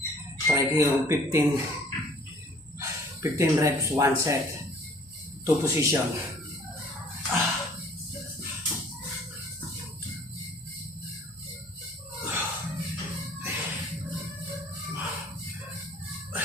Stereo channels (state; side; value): normal; both; correlation 0.54